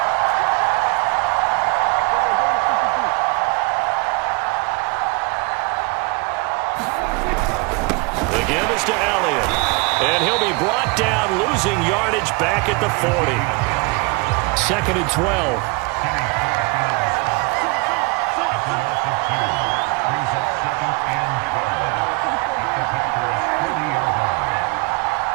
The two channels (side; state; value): left; quieter; 28.8 dB